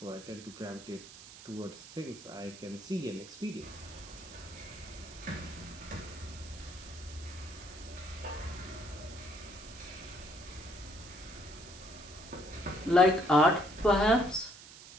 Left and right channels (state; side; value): noise; right; hiss, 16 dB below the sound